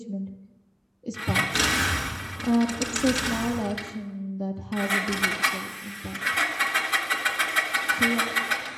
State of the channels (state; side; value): identical; both; correlation 1.00